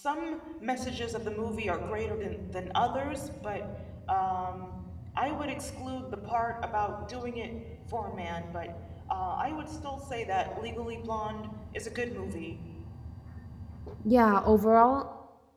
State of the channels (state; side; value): identical; both; correlation 1.00